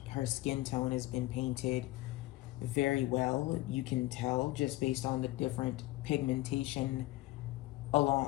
her skin tone has been painted very well. You can tell just based on the different pigmentation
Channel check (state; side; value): quieter; right; 18.6 dB